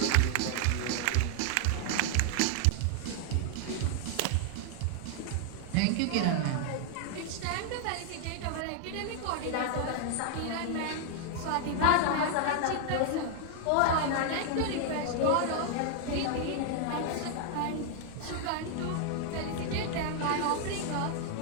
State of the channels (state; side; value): different; both; correlation 0.00